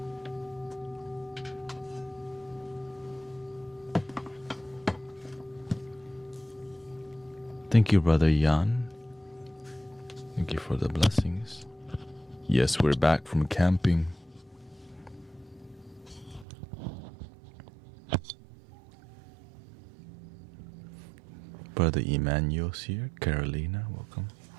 Thank you, Brother Jan. Thank you for the blessings. Yes, we're back from camping. Brother Emmanuel's here. Carolina, welcome.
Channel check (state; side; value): drops out; left; at 16.4 s